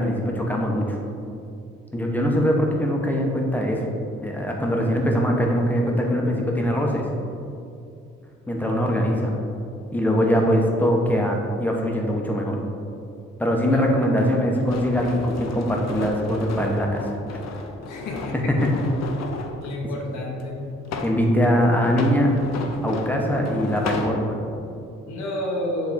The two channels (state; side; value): normal; both; correlation 0.67